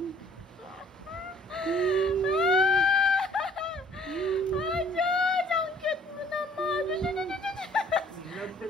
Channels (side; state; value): both; normal; correlation 0.56